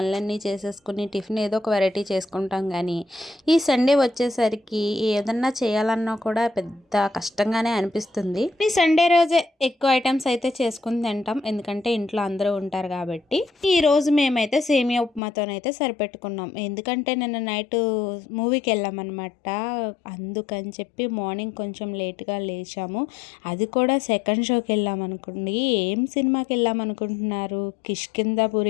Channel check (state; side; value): drops out; right; at 15.2 s